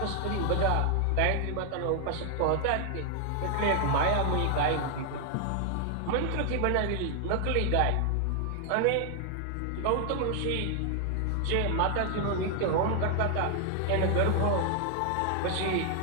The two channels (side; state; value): both; different; correlation 0.00